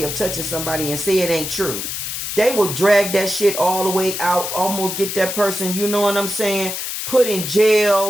of touching somebody and say it ain't true, they will drag that shit all the way out, almost get that person, you know what I'm saying, put in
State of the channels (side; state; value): left; noise; hiss, 5 dB below the sound